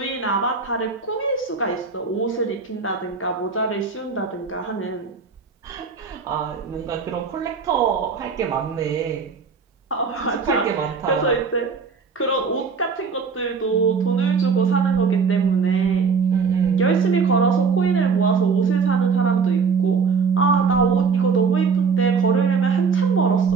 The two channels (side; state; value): left; quieter; 5.3 dB